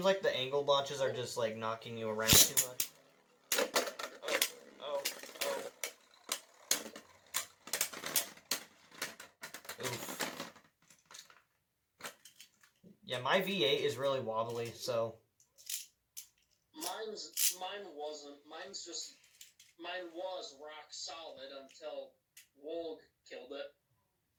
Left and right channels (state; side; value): identical; both; correlation 1.00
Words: like the angle launches are just, like, knocking you around too much. Oh. Oof. Yeah, my V8 is really wobbly, so... Mine was rock solid until Wolg killed it.